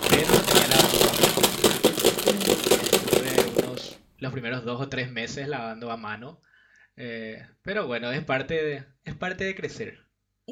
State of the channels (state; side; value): identical; both; correlation 1.00